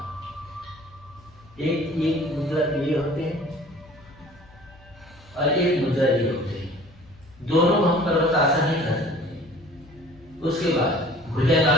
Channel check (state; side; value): noise; left; hum, 25 dB below the sound